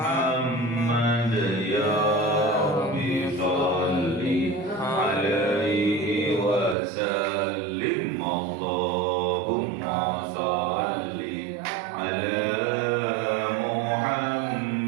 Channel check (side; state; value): left; drops out; at 6.8 s